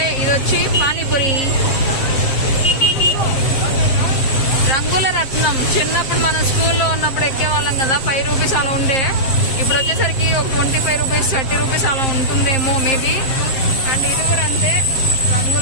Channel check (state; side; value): late; right; 7.6 ms